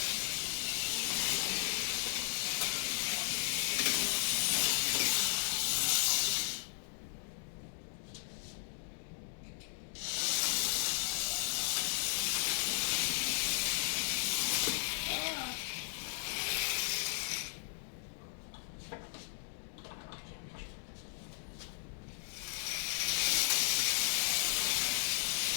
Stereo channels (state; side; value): silent; right; digital silence